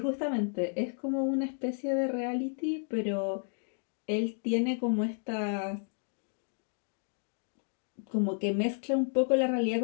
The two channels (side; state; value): right; silent; 56 dB below the other